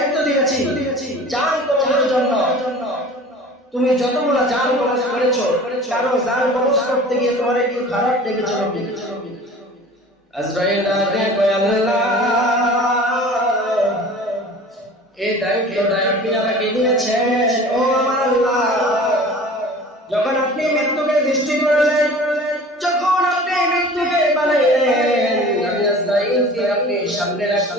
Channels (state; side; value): normal; both; correlation 0.42